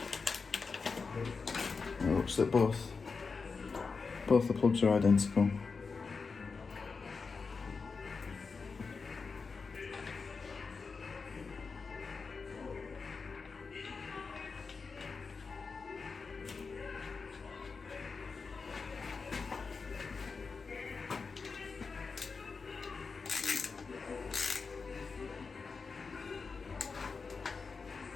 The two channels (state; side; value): quieter; right; 4.8 dB